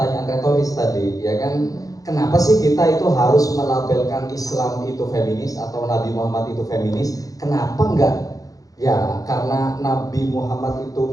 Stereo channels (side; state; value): right; late; 0.17 ms